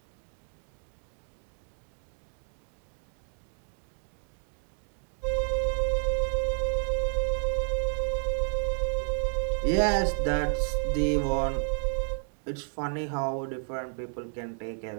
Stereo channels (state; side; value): silent; left; 57 dB below the other